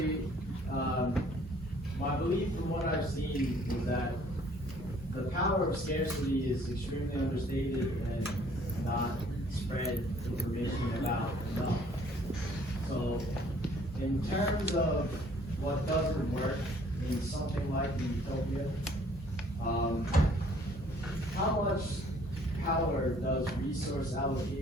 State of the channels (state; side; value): normal; both; correlation 0.58